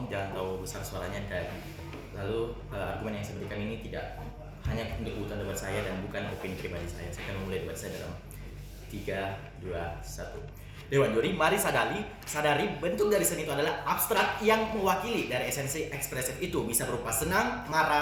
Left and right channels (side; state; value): both; identical; correlation 1.00